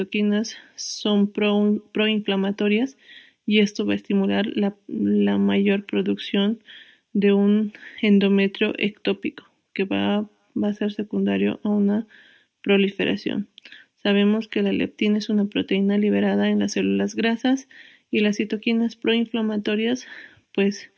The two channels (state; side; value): identical; both; correlation 1.00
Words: son proinflamatorias y esto va a estimular la mayor producción de un endometrio ectópico que va a ser secundario a una proliferación. Sabemos que la leptina es una proteína liberada en las células grasas y las citoquinas proinflamatorias pues